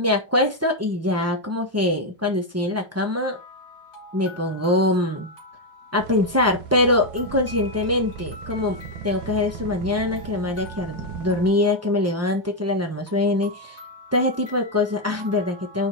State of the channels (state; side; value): normal; both; correlation 0.02